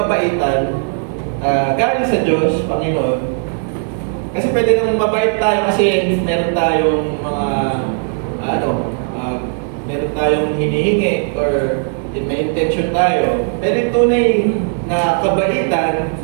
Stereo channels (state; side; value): silent; left; 56 dB below the other